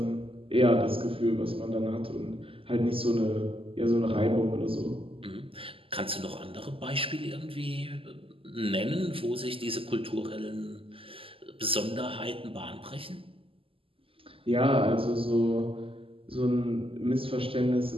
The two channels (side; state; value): left; late; 0.26 ms